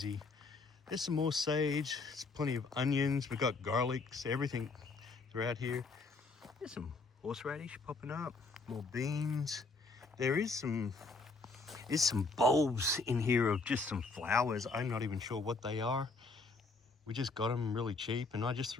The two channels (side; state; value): right; quieter; 3.9 dB